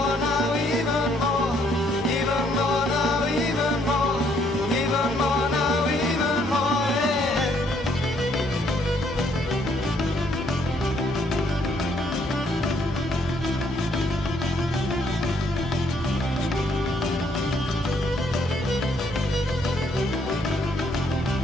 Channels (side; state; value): both; normal; correlation 0.69